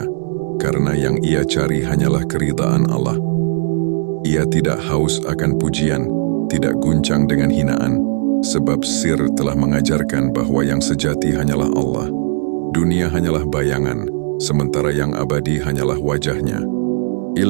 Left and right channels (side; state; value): left; silent; 65 dB below the other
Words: karena yang ia cari hanyalah keridaan Allah. Ia tidak haus akan pujian, tidak guncang dengan hinaan, sebab sir telah mengajarkan bahwa yang sejati hanyalah Allah. Dunia hanyalah bayangan, sementara yang abadi hanyalah wajahnya.